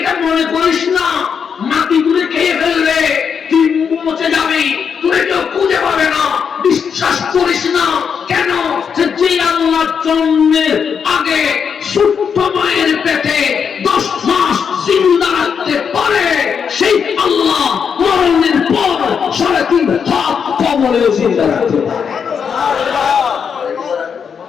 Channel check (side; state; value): right; quieter; 6.8 dB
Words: মনে করিস না মাটি তুলে খেয়ে ফেললে তুই পৌঁছে যাবি, তুই কেউ খুঁজে পাবে না। বিশ্বাস করিস না। কেন? যে আল্লাহ জন্মের আগে সুপ্ত মায়ের পেটে 10 মাস জিন্দা রাখতে পারে, সেই আল্লাহ মরণের পর 3.5 হাত কবরেও জিন্দা রাখতে পারে।